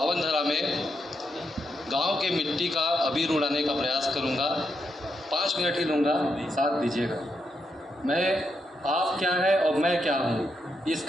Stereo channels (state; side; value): normal; both; correlation 0.82